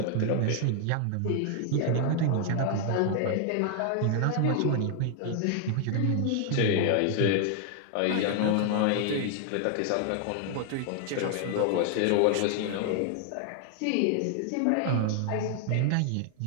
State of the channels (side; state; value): both; different; correlation 0.00